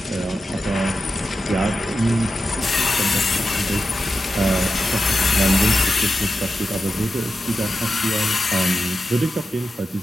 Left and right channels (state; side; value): normal; both; correlation 0.90